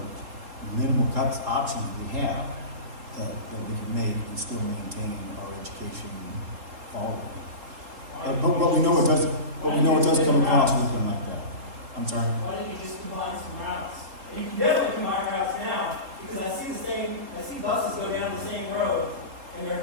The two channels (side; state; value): left; late; 3.7 ms